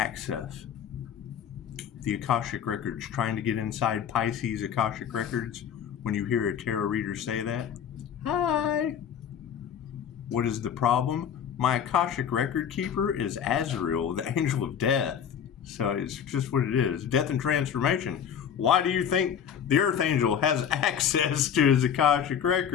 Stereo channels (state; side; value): quieter; right; 8.4 dB